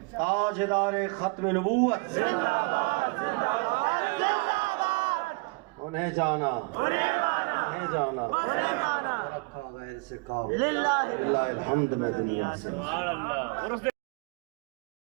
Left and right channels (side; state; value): left; quieter; 29.4 dB